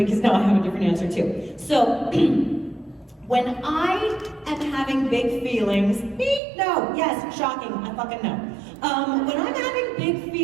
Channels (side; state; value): left; drops out; at 6.4 s